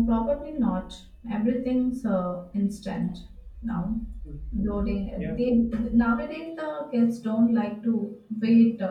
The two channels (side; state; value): both; identical; correlation 1.00